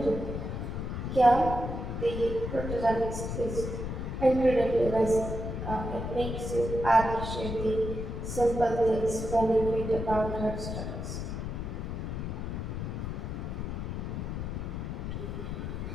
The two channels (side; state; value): left; noise; rumble, 4 dB below the sound